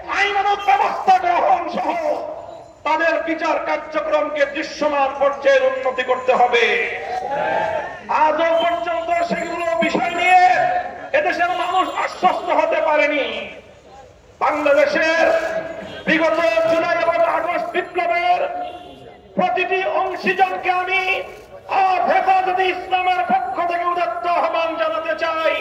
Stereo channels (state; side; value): identical; both; correlation 1.00